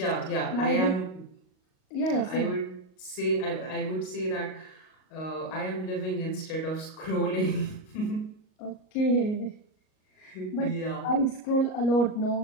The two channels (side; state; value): right; late; 38 ms